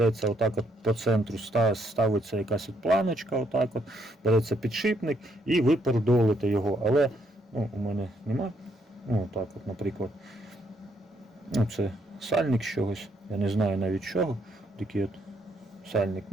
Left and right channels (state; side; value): normal; both; correlation 0.73